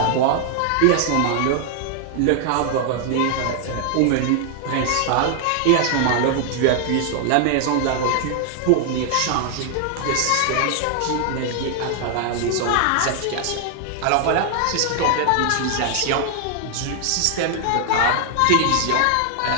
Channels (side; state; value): both; different; correlation 0.00